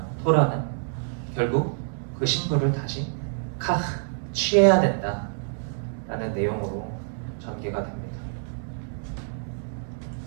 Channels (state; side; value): silent; left; 60 dB below the other